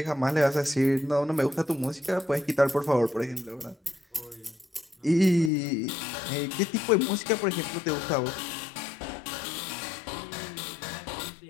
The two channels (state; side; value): drops out; right; at 5.5 s